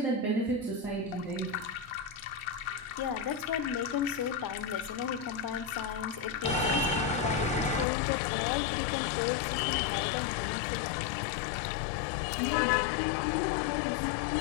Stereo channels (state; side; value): drops out; right; at 7.9 s